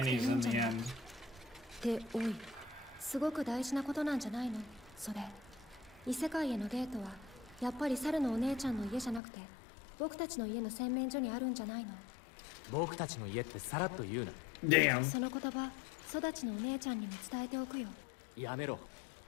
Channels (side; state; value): right; drops out; at 9.2 s